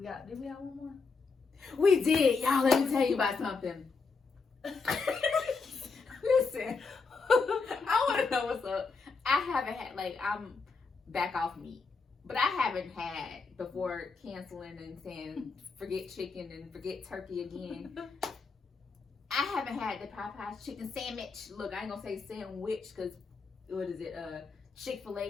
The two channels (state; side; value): quieter; right; 4.6 dB